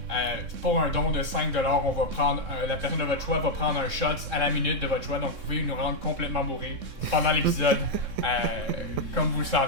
pour un don de 5$, on va prendre la personne de votre choix va prendre un shot à la minute de votre choix, donc vous pouvez nous rendre complètement bourrés pendant l'épisode, comme vous le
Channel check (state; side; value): late; left; 3.7 ms